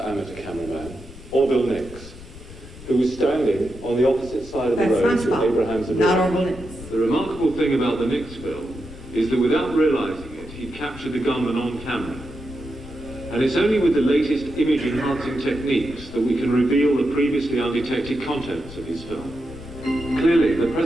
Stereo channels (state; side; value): noise; left; rumble, 16 dB below the sound